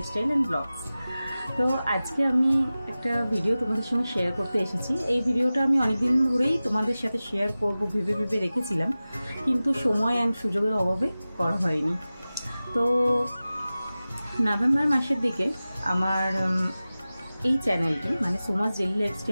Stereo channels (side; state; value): both; inverted; correlation -0.96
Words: and blogs. তো আজকে আমি একটা ভিডিও তোমাদের সঙ্গে শেয়ার করতে এসেছি। এই ভিডিওটা আমি অনেকদিন ধরেই তোমাদের সাথে শেয়ার করব ভেবে রেখেছিলাম, কিন্তু সময় অ্যান্ড সুযোগের অভাবে করা হয়নি। তো নভেম্বর মাসের দিকে আমার এই চ্যানেলটি মানে সোমাস ডেইলি